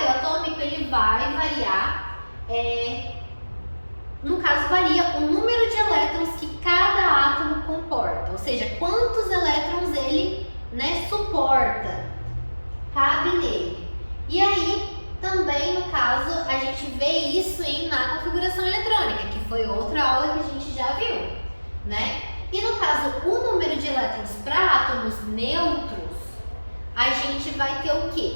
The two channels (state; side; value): inverted; both; correlation -1.00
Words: atômico, ele vai variar, no caso, varia o número de elétrons que cada átomo comporta, ou seja, quantos elétrons ele, né, suporta, cabe nele. E aí, também, no caso, a gente vê isso na configuração eletrônica, que foi outra aula que a gente já viu, né? E no caso, o número de elétrons para átomos neutros, a gente vai ter o